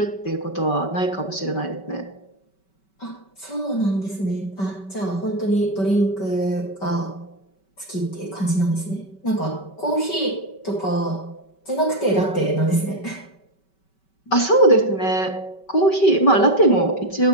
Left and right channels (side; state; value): right; late; 5.2 ms